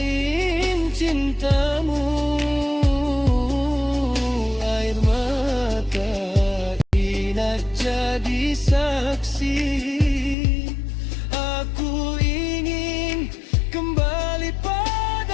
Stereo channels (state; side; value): drops out; right; at 10.4 s